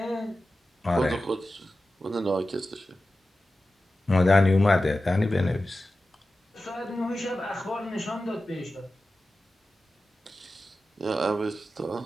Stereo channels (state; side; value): normal; both; correlation 0.93